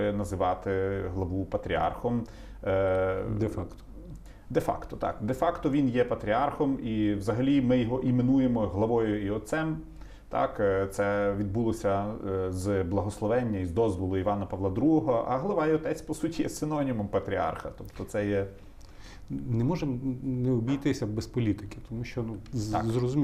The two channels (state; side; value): identical; both; correlation 1.00